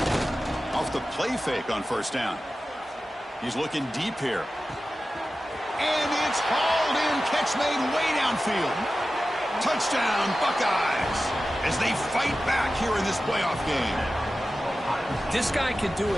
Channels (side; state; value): both; normal; correlation 0.94